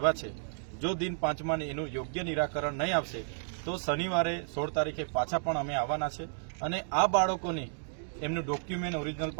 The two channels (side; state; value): left; silent; digital silence